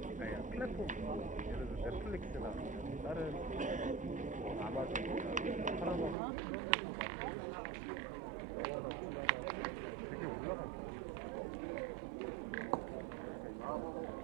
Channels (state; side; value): drops out; left; at 6.2 s